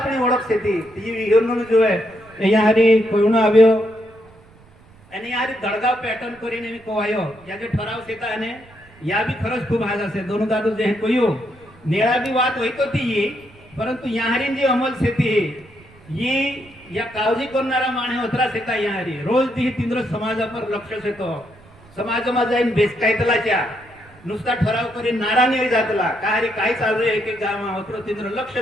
ओळख सेती ती विहरणून जो आहे यारी कोयणो આવ્યો અને यारी दडगाव पॅटर्न કરીને मी कोवायो या जे ठराव सेता અને या भी खरच खूप हाज असे दोन दादू जे कोयो नेळा भी बात होईतो ती परंतु यारी जी अमल सेती ही या काळजी करणारा माणे होतरा सेता यारी रोज ती तिंद्र समाजावर लक्ष सेतो समाजमा जाईन बेसकायतलाच्या नुसता ठराव करी नारा नाही जातला काही काय चालू आहे की गाव होतरो तिंद्र लक्ष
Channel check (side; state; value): right; noise; rumble, 26 dB below the sound